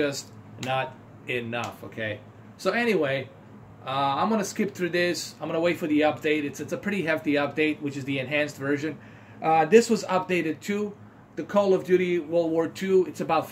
not enough. Okay, so anyway, I'm gonna skip through this. I'm gonna wait for the update. It's a pretty hefty update, which is the enhanced version. This was updated too. The Call of Duty World War II, it's about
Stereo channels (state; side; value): identical; both; correlation 1.00